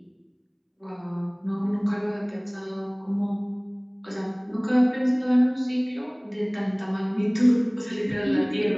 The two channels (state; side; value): identical; both; correlation 1.00